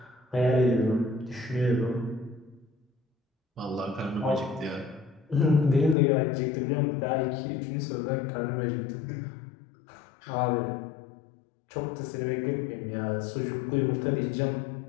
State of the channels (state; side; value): drops out; right; at 6.0 s